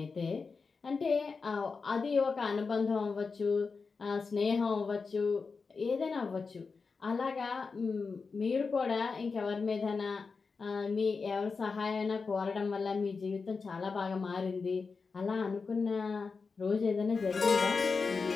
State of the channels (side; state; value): right; quieter; 4.7 dB